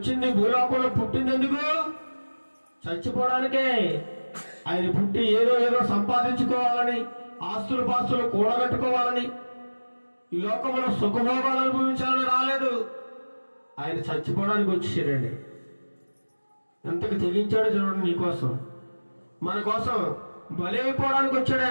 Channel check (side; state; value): both; inverted; correlation -1.00